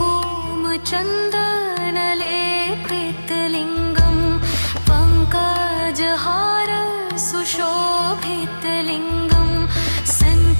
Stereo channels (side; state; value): both; inverted; correlation -1.00